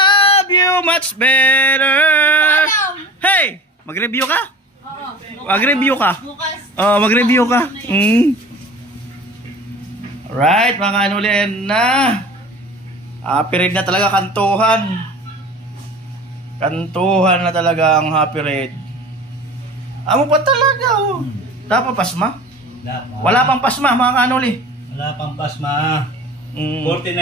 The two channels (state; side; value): normal; both; correlation 0.39